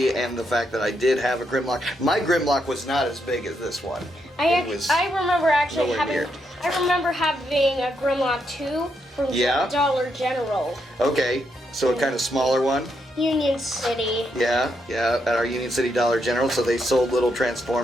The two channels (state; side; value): normal; both; correlation 0.80